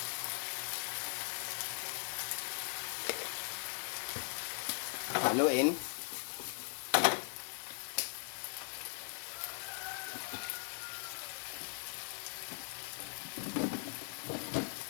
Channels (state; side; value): silent; right; 51 dB below the other